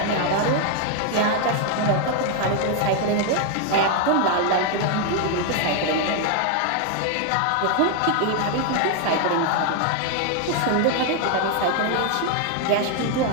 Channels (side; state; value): both; different; correlation 0.00